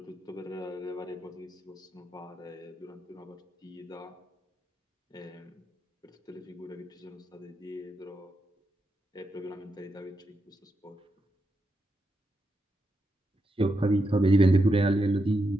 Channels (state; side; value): normal; both; correlation 0.84